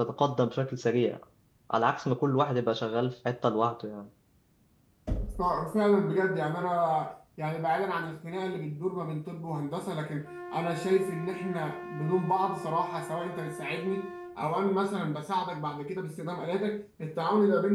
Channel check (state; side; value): identical; both; correlation 1.00